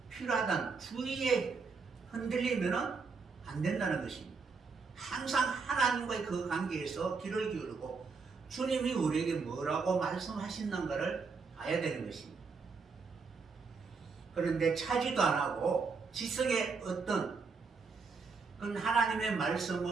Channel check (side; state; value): left; quieter; 4.8 dB